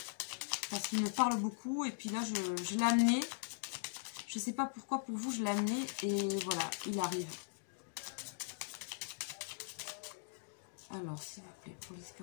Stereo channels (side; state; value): right; silent; digital silence